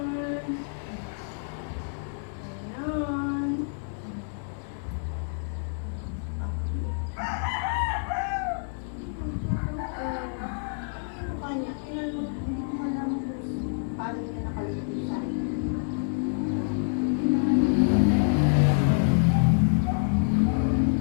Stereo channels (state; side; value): silent; right; digital silence